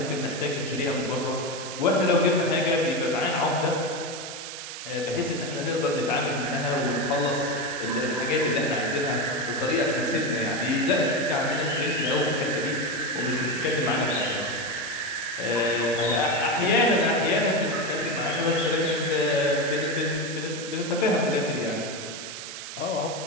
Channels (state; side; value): noise; right; hiss, 9 dB below the sound